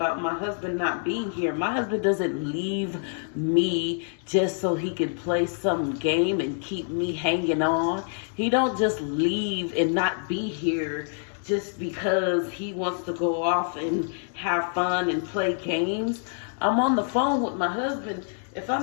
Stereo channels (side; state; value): right; silent; 61 dB below the other